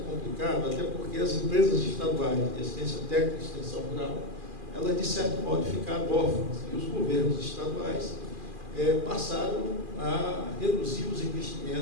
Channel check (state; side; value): late; left; 2.4 ms